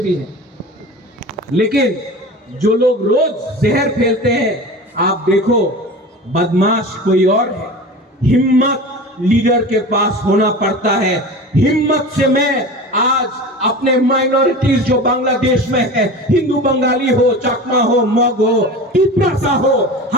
हैं, लेकिन जो लोग रोज जहर फैलते हैं, आप देखो बदमाश कोई और है। हिम्मत लीडर के पास होना पड़ता है। हिम्मत से मैं आज अपने माइनॉरिटीज जो बांग्लादेश में है, हिंदू बंगाली हो, चाकमा हो, मग हो, टिप्रासा हो,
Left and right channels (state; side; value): normal; both; correlation 0.33